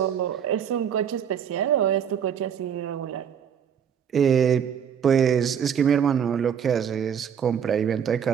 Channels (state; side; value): quieter; left; 8.1 dB